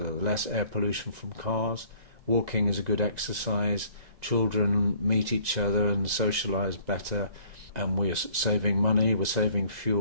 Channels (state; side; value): late; left; 1.9 ms